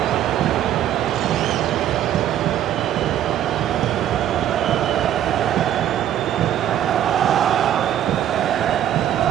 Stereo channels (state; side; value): quieter; left; 11.1 dB